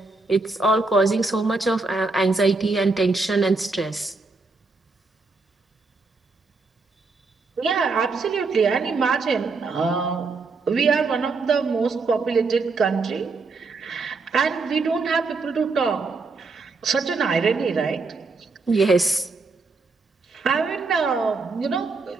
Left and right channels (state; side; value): quieter; left; 4.0 dB